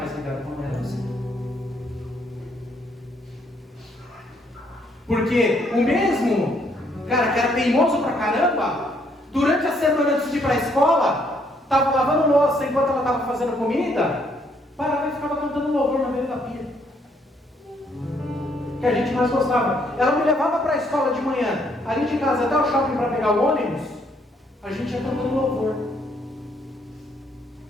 ligado com ela assim. Porque o mesmo cara que era teimoso pra caramba, durante a semana antes de ir para a escola, estava lavando louça enquanto ela estava fazendo comida, parava e ficava cantando louvor na beira da pia. Que a gente mais gostava. Ela me levava para a escola de manhã, ali de casa até o shopping para pegar o ônibus, a gente ia cantando louvor.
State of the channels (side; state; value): both; normal; correlation 0.69